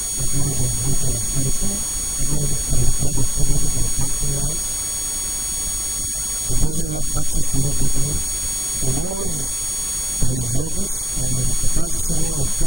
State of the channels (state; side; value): normal; both; correlation 0.95